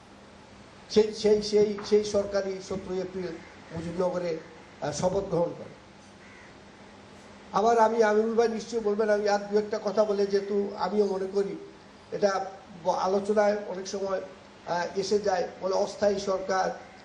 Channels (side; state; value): both; identical; correlation 1.00